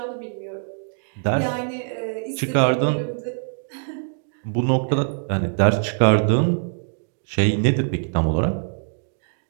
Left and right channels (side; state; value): left; silent; digital silence